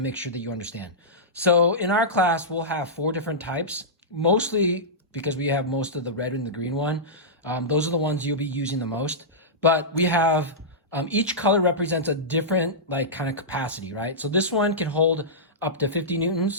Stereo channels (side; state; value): both; normal; correlation -0.15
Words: sure that you understand. So in our class, we'll have 4 different types, mostly because we have most of the red and the green one. Those are the ones you'll be using the most. But we have, each color represents a different like kind of capacity, right? So this one can hold up to 50